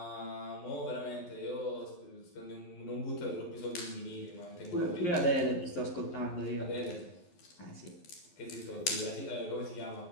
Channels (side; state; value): right; late; 11 ms